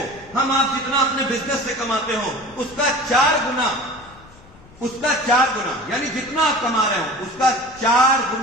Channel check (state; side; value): noise; left; rumble, 24 dB below the sound